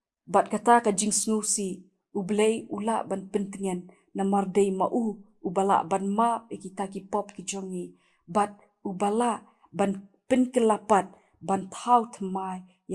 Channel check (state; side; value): identical; both; correlation 1.00